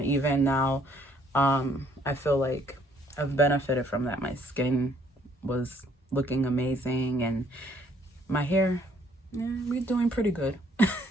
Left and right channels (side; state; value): both; normal; correlation 0.65